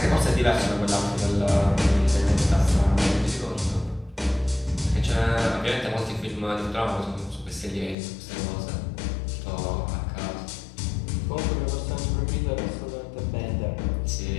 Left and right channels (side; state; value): right; drops out; at 8.0 s